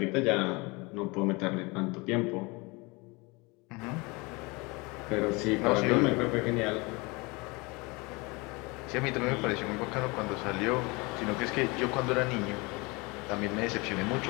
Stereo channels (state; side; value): quieter; right; 26.3 dB